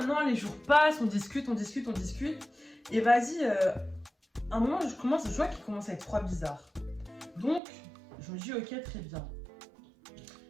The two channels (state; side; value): drops out; left; at 7.6 s